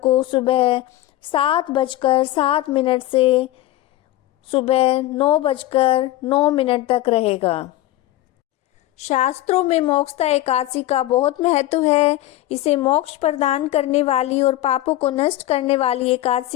सुबह 7:07 से सुबह 9:09 तक रहेगा। शास्त्रों में मोक्षदा एकादशी का बहुत महत्व है। इसे मोक्ष प्रदान करने वाली और पापों को नष्ट करने वाली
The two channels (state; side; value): quieter; right; 15.2 dB